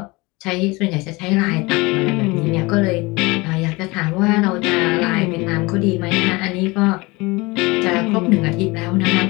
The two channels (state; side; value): quieter; right; 23.9 dB